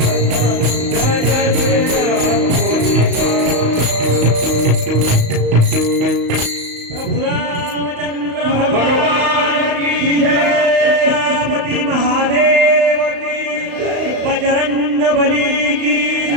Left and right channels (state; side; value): late; left; 35 ms